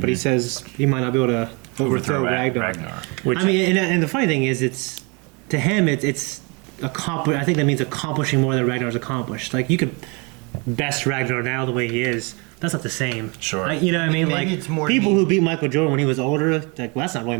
he says he might not be able to overthrow Ragnar. Which, I mean, and the funny thing is, it's to him, it's accomplish. I think that means accomplishing more than Ragnar's accomplished. Like, you could best Ragnar now the way he is. That's not the same. Sure. Like, you know what I mean? Maybe Like, it's more people who beat Michael Jordan when he was older, like, well, that's not really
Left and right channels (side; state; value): left; quieter; 30.6 dB